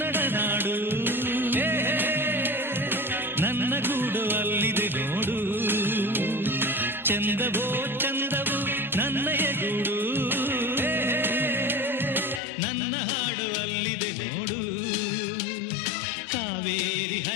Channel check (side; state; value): right; drops out; at 12.4 s